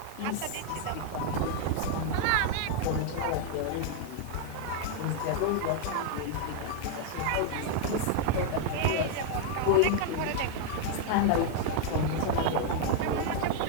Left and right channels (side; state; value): both; different; correlation 0.00